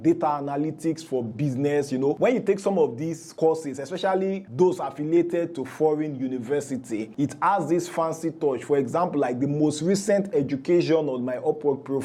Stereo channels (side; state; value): both; identical; correlation 1.00